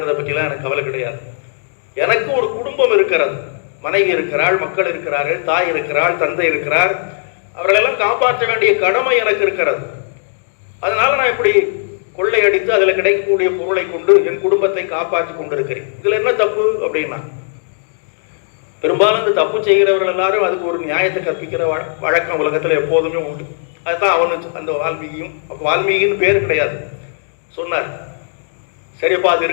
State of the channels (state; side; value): silent; right; digital silence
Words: பற்றிலாம் எனக்கு கவலை கிடையாது. எனக்கு ஒரு குடும்பம் இருக்கிறது, மனைவி இருக்கிறாள், மக்கள் இருக்கிறார்கள், தாய் இருக்கிறாள், தந்தை இருக்கிறார். அவர்களெல்லாம் காப்பாற்ற வேண்டிய கடமை எனக்கு இருக்கிறது. அதனால நான் இப்படி கொள்ளையடித்து அதில் கிடைக்கக்கூடிய பொருளை கொண்டு என் குடும்பத்தை காப்பாற்றி கொண்டிருக்கிறேன். இதுல என்ன தப்பு அப்படின்னா, பெரும்பாலும் இந்த தப்பு செய்கிறவர்கள் எல்லாரும் அதுக்கு ஒரு நியாயத்தை கற்பிக்கிற வழக்கம் உலகத்துல எப்போதுமே உண்டு. அதுதான் அவனு அந்த வால்மீகியும், அப்போ வால்மீகின்னு பேர் கிடையாது, சொன்னார். சரிப்பா, அது